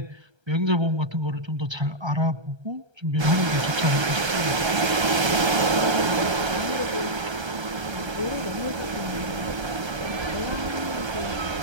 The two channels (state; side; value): late; left; 1.3 ms